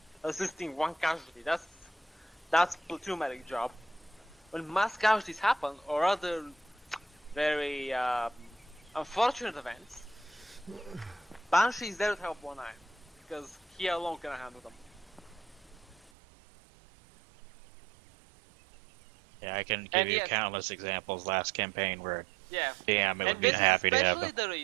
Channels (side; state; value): left; drops out; at 16.1 s